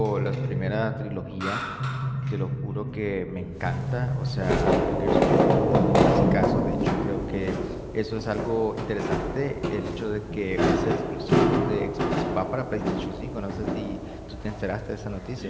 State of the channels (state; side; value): identical; both; correlation 1.00